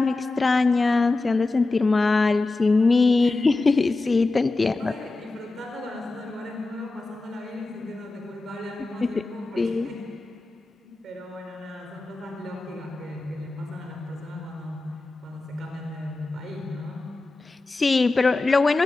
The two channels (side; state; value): right; quieter; 3.3 dB